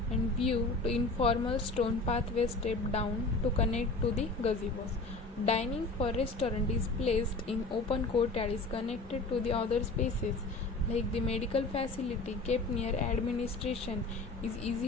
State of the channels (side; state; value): right; quieter; 3.3 dB